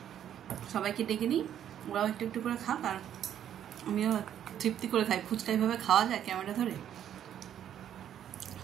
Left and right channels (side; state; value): left; quieter; 10.2 dB